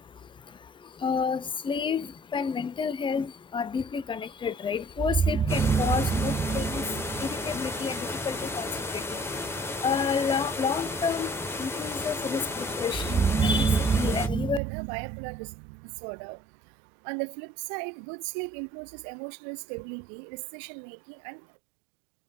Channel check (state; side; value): drops out; left; at 14.6 s